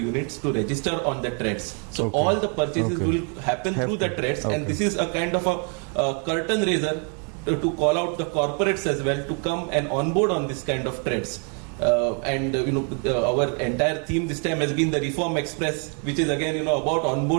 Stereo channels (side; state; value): left; quieter; 39.6 dB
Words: to register on the trades. So all the purchases will happen through the trades, and this is a kind of a curtain raiser to call out the corporates as well to come and onboard on this kind of trades. Our entire theme this time has been the Reform Express, which is again about